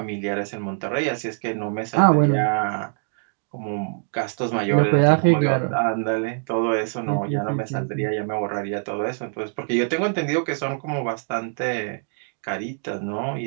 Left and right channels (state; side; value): silent; left; digital silence